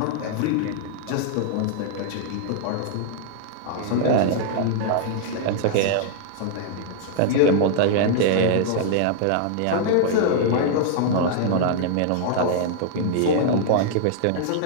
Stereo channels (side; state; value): both; different; correlation -0.01